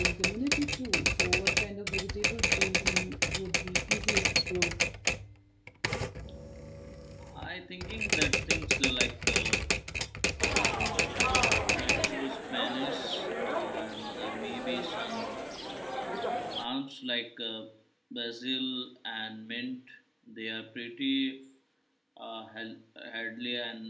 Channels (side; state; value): both; identical; correlation 1.00